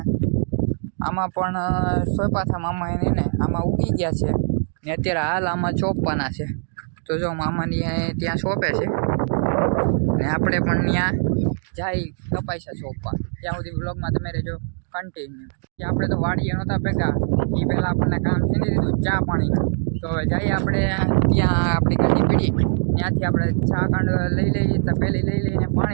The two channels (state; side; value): silent; left; digital silence